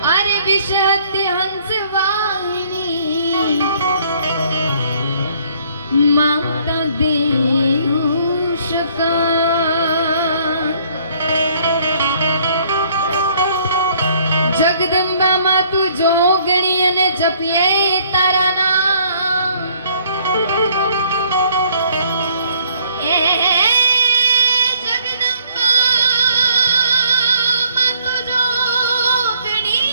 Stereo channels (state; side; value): inverted; both; correlation -0.63